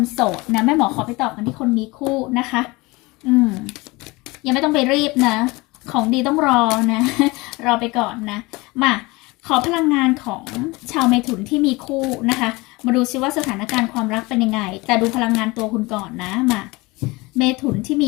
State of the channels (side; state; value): right; quieter; 23.4 dB